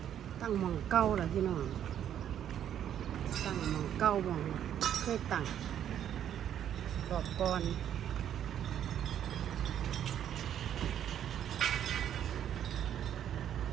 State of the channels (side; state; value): left; quieter; 10.1 dB